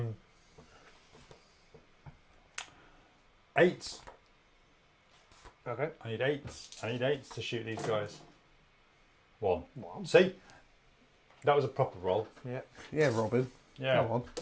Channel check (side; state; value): both; identical; correlation 1.00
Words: Okay. I need 8s. I need 8s to shoot these guys. 1. One. See? That was a proper roll. Yeah. Yeah, Robin. Yeah. Come on.